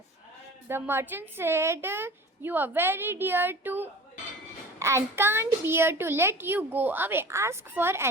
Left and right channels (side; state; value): both; normal; correlation 0.40